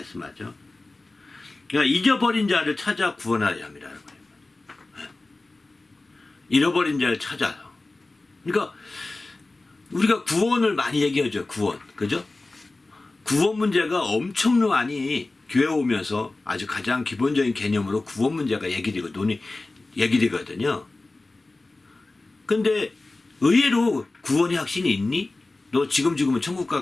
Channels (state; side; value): quieter; right; 3.1 dB